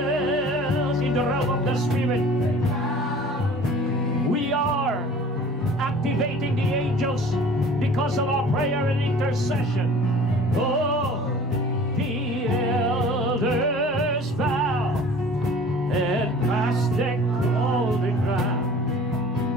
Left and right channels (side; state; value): both; normal; correlation 0.45